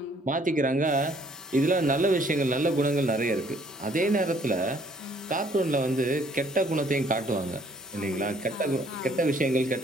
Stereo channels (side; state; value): both; normal; correlation 0.61